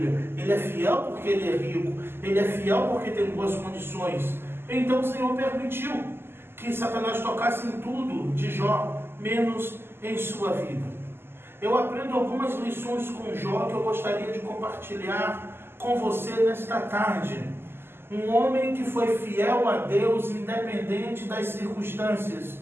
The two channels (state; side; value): late; left; 0.11 ms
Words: ele é fiel porque ele é rico, ele é fiel porque tem boas condições. Então o Senhor permitiu que Satanás tocasse em tudo de Jó, menos em sua vida. Eu aprendo algumas lições com Jó que eu gostaria de compartilhar com você nesta tarde. Um homem que foi fiel a Deus independente das circunstâncias,